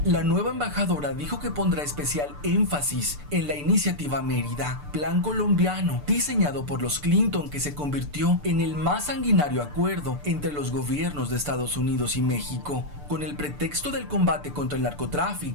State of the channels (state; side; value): late; left; 6.8 ms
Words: La nueva embajadora dijo que pondrá especial énfasis en la iniciativa Mérida, plan colombiano diseñado por los Clinton, que se convirtió en el más sanguinario acuerdo entre los gobiernos de Estados Unidos y México. Con el pretexto del combate contra el